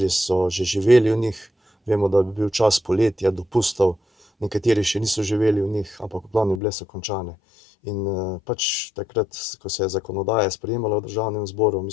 so že živeli v njih, vemo, da bi bil čas poletja, dopustov, nekateri še niso živeli v njih, ampak v glavnem bile so končane. In pač takrat, ko se je zakonodaja sprejemala v Državnem zboru, mi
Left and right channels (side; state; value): right; drops out; at 6.6 s